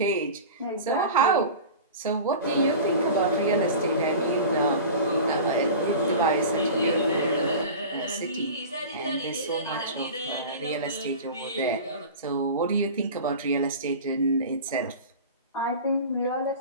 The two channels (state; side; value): inverted; both; correlation -0.34